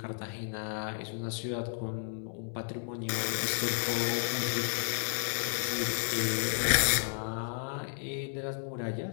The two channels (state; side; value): silent; right; digital silence